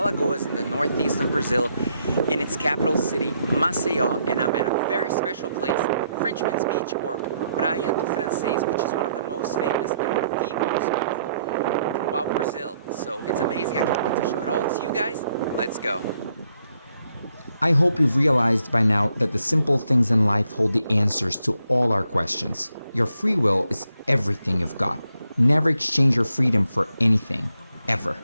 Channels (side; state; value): both; inverted; correlation -0.75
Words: in the northeast of Brazil, in its capital city, Maceió, and I'm at a very special place, Frenchman's Beach, or Praia do Francês, which is one of the most famous and the most beautiful throughout Brazil. So it's amazing. I can't wait to show it all to you guys. Let's go. I hope you've realized by now that the simple things in life hold the answers to all our questions. Your free will is everything you've got. Never exchange your freedom for anything, ever.